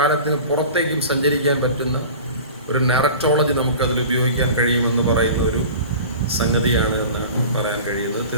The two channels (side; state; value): both; inverted; correlation -0.38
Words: പുറത്തേക്കും സഞ്ചരിക്കാൻ പറ്റുന്ന ഒരു നററ്റോളജി നമുക്കതിൽ ഉപയോഗിക്കാൻ കഴിയുമെന്ന് പറയുന്ന ഒരു സംഗതിയാണ് എന്നാണ് പറയാൻ കഴിയുന്നത്.